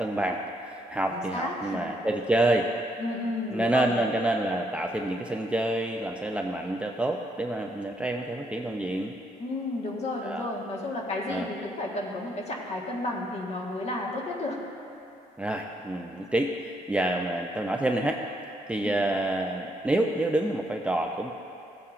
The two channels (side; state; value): both; normal; correlation 0.74